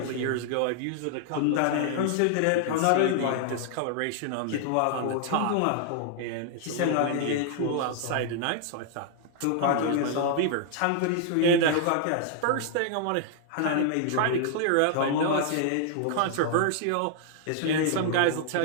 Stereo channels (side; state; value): both; different; correlation -0.01